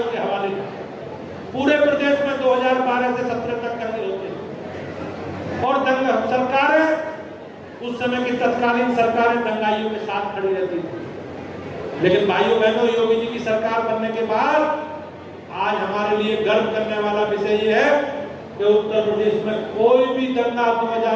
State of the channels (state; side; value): identical; both; correlation 1.00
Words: के हवाले था। पूरे प्रदेश में 2012 से 17 तक दंगे होते थे, और दंगा सरकारें, उस समय की तत्कालीन सरकारें दंगाइयों के साथ खड़ी रहती थी। लेकिन भाइयों बहनों, योगी जी की सरकार बनने के बाद आज हमारे लिए गर्व करने वाला विषय ये है कि उत्तर प्रदेश में कोई भी दंगा